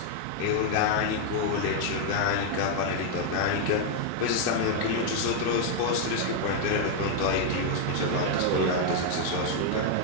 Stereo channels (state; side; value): different; both; correlation 0.00